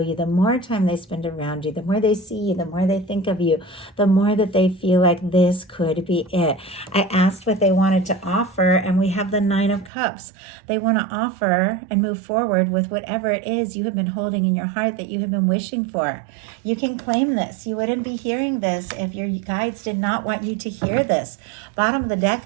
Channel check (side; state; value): left; drops out; at 9.9 s